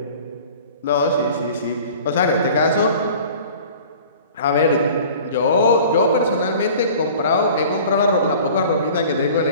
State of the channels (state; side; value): inverted; both; correlation -0.45